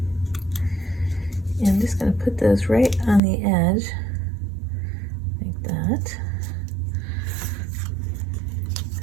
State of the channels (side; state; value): left; drops out; at 3.2 s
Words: I'm just going to put those right on the edge, like that.